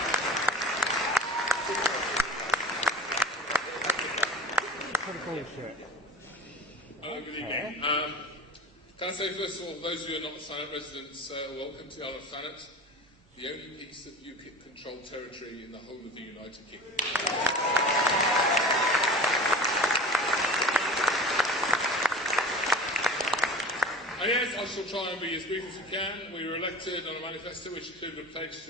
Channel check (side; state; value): both; normal; correlation 0.37